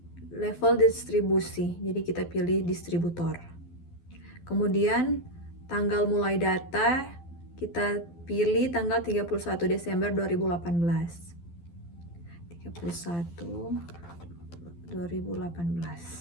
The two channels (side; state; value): right; late; 12 ms